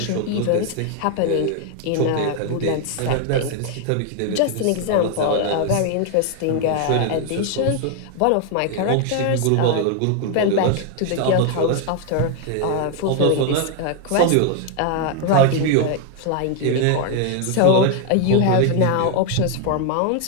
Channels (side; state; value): both; different; correlation 0.00